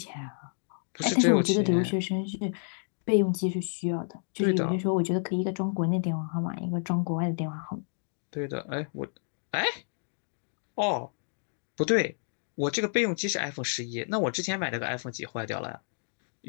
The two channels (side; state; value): right; silent; digital silence